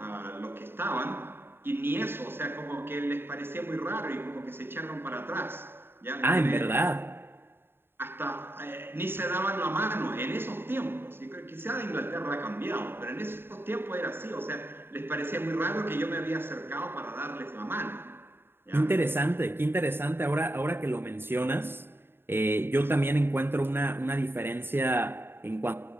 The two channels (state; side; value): late; left; 0.11 ms